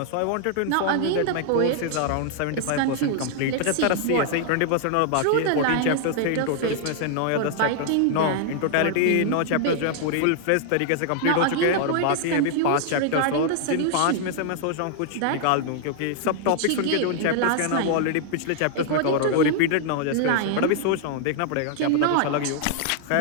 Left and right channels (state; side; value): different; both; correlation 0.00